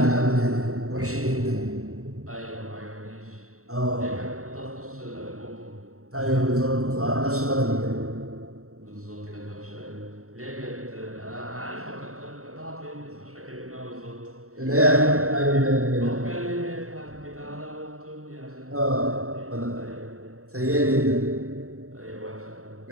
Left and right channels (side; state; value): left; late; 0.64 ms